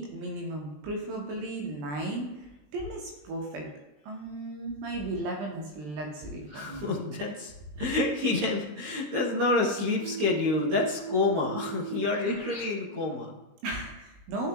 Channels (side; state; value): left; late; 19 ms